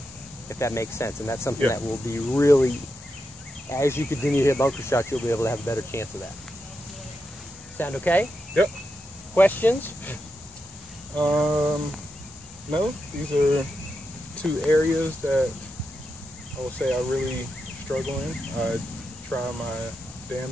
if that makes sense. And that's something that will be really, as you continue to hit bunker shots, you'll be able to have a better chance of that. Sound okay? Yep. Questions? No, these are two areas that I will say I really struggle in. I try my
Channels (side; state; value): both; normal; correlation 0.86